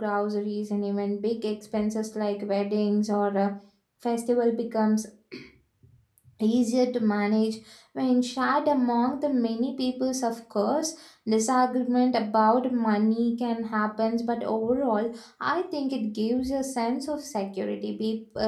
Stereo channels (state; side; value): identical; both; correlation 1.00